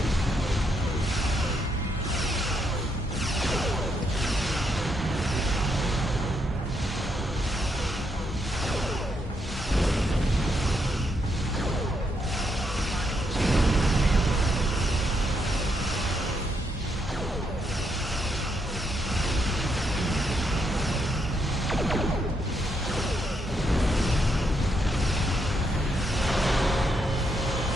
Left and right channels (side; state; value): both; normal; correlation 0.78